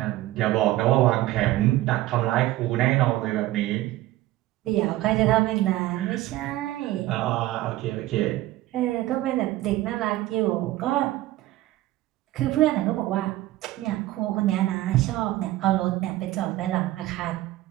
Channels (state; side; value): quieter; left; 16.2 dB